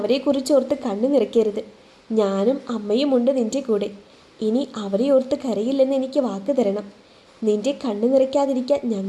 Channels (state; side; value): identical; both; correlation 1.00